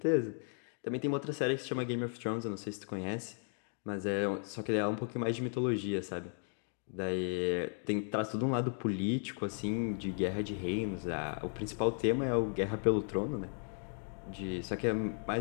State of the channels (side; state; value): right; silent; 54 dB below the other